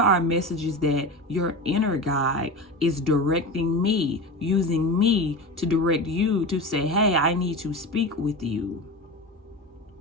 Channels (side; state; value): both; normal; correlation 0.26